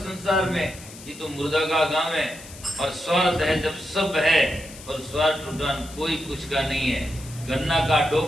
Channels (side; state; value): left; noise; hiss, 17 dB below the sound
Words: में। ये तो मुर्दा का गांव है, और स्वार्थ है जब सब है, और स्वार्थ उठान कोई कुछ का नहीं है। गन्ना का